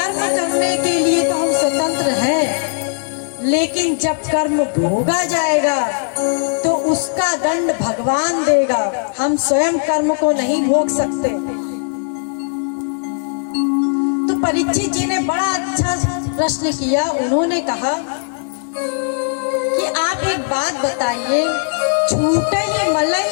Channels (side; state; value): right; silent; digital silence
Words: करने के लिए तो हम स्वतंत्र हैं, लेकिन जब कर्म भोगा जाएगा तो उसका दंड भगवान देगा। हम स्वयं कर्म को नहीं भोग सकते। तो परीक्षित जी ने बड़ा अच्छा प्रश्न किया। उन्होंने कहा कि आप एक बात बताइए, छूटई